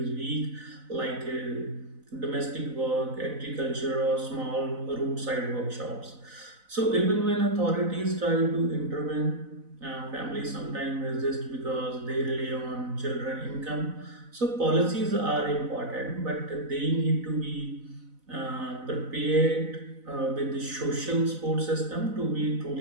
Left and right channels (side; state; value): left; late; 4.0 ms